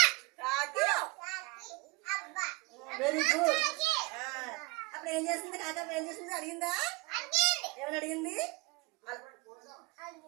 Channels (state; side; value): quieter; left; 24.9 dB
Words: కాకి. Very good. అప్పుడు ఏం చేస్తుంది కాకి? ఏం చేస్తుంది అడిగిందా? ఏమని అడిగింది?